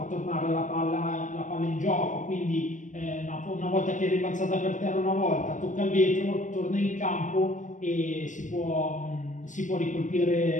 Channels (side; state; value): right; late; 0.37 ms